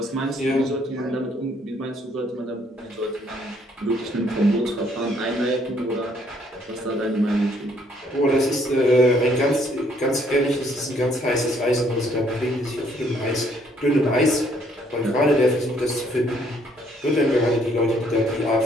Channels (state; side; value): normal; both; correlation 0.65